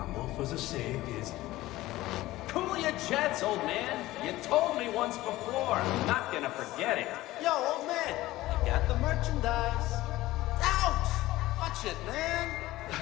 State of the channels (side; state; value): right; quieter; 17.1 dB